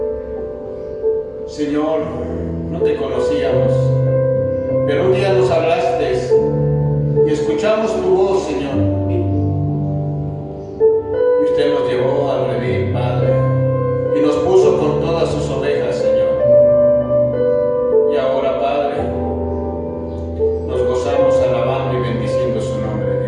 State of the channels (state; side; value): identical; both; correlation 1.00